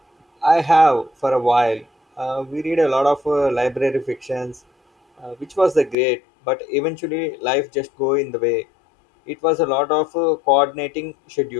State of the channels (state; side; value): drops out; right; at 6.0 s